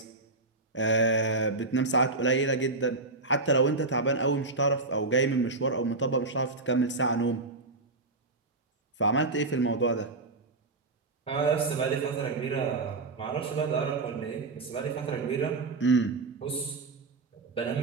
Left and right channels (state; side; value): quieter; left; 3.4 dB